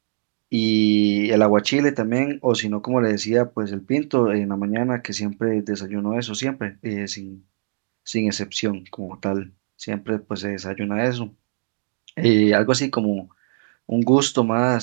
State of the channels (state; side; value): silent; left; digital silence